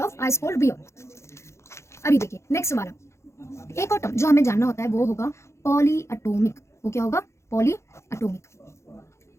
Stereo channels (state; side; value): late; right; 0.13 ms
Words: ice cold beer. अभी देखिए नेक्स्ट वाला, एक और टर्म जो हमें जानना होता है वो होगा पॉलीएटॉमिक। वो क्या होगा, पॉलीएटॉमिक।